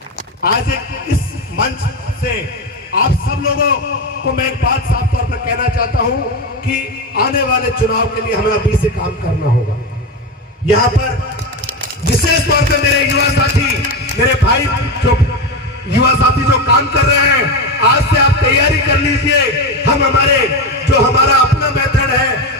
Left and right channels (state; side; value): normal; both; correlation 0.16